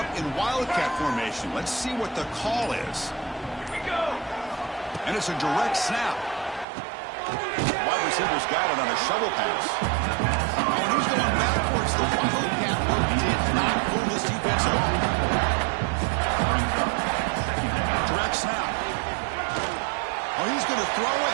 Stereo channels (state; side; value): drops out; left; at 6.7 s